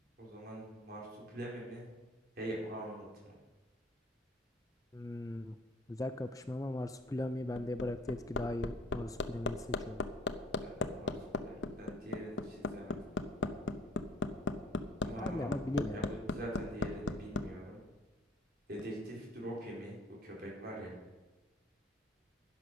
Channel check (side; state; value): both; normal; correlation 0.55